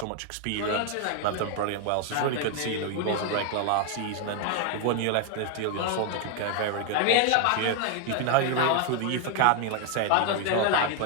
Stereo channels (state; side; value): different; both; correlation 0.01